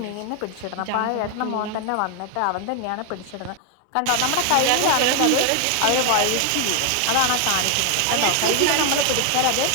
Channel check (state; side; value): different; both; correlation 0.00